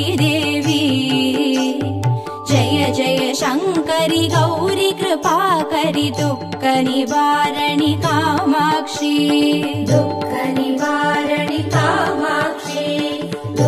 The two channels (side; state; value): both; identical; correlation 1.00